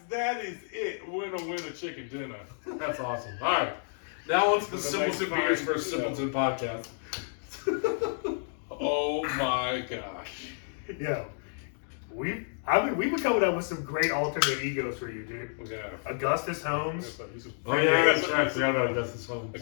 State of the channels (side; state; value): right; silent; digital silence